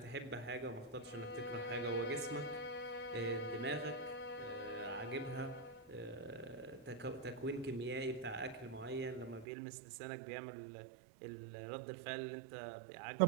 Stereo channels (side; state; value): left; drops out; at 9.5 s